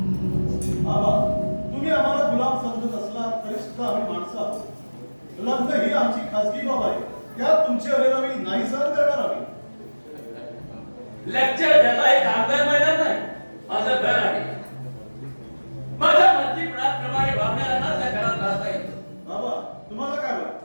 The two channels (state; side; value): inverted; both; correlation -1.00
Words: बाबा, तुम्ही आम्हाला गुलाम समजत असला तरी सुद्धा आम्ही माणसं आहोत. लग्न ही आमची खासगी बाब आहे. त्यात तुमची अरेरावी नाही सहन करणार आम्ही. लेक्चर द्यायला एक कामगार मैदान नाही, माझं घर आहे. माझ्या मर्जीप्रमाणे वागणाऱ्यांनाच या घरात राहता येतं. बाबा, तुम्हाला काय